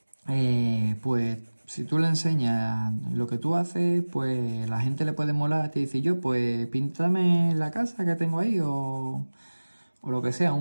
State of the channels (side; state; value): both; inverted; correlation -1.00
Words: pues si tú le enseñas lo que tú haces, pues la gente le puede molar. Te dice yo, pues píntame la casa que tengo ahí o lo que sea,